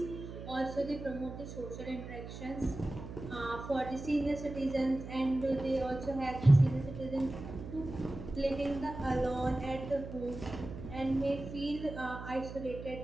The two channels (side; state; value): right; noise; hum, 10 dB below the sound